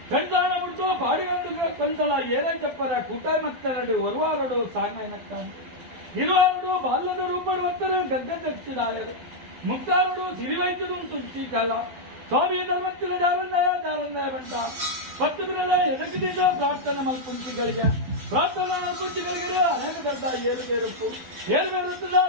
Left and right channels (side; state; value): left; late; 12 ms